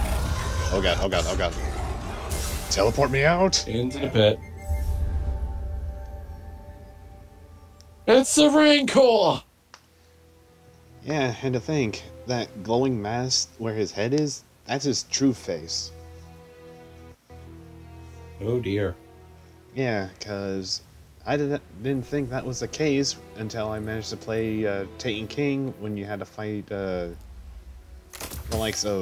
Oh god, oh god, oh god. Teleport me out! Into the pit. It's the Rancor! Yeah, and to think, that glowing mass where his head is, that's his true face. Oh dear. Yeah, because I didn't think that was the case until I managed to play Taken King when you had to fight the likes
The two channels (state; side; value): identical; both; correlation 1.00